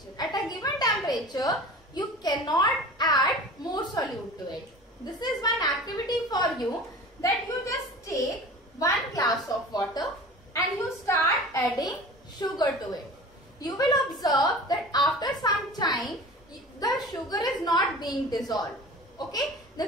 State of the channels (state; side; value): normal; both; correlation 0.38